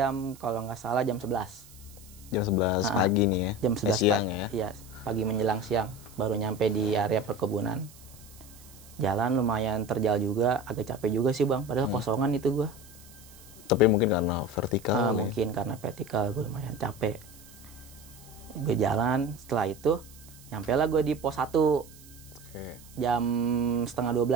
kalau nggak salah jam 11. Jam 11 pagi nih ya. Jam 11 siang pagi. ya. Iya, pagi menjelang siang baru nyampe di area perkebunan. Jalan lumayan terjal juga, agak capek juga sih bang, padahal kosongan itu gua. Tapi mungkin karena vertikal. Mungkin karena vertikal gue lumayan capek. Gue jalan, setelah itu nyampe lah gue di pos 1 jam setengah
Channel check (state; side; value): noise; right; hiss, 22 dB below the sound